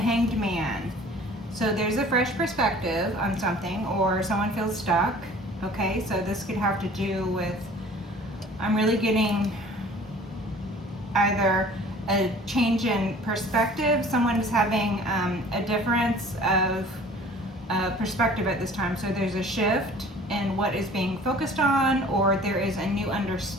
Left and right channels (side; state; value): both; normal; correlation 0.48